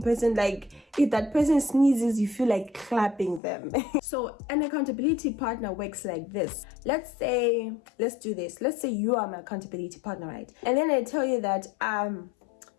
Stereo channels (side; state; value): right; drops out; at 3.4 s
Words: person, like if that person sneezes, you feel like clapping them. So an accountability partner works like this. Let's do this. Let's say you are my accountability partner, right? And then I tell you that